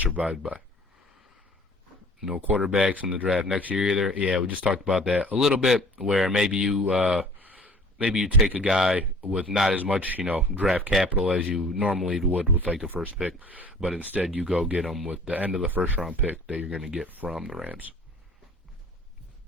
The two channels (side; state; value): both; normal; correlation 0.49